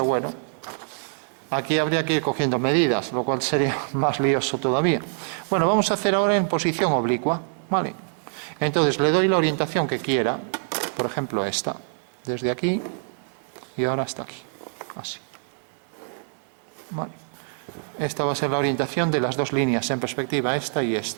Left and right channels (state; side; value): silent; left; digital silence